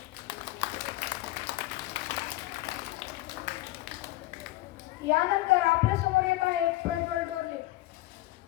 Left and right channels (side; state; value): right; quieter; 17.8 dB